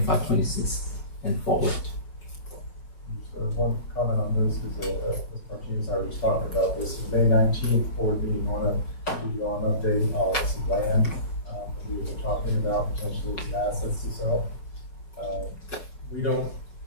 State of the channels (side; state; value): right; late; 5.6 ms